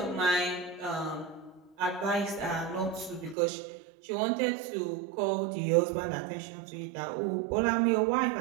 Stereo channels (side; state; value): left; drops out; at 3.4 s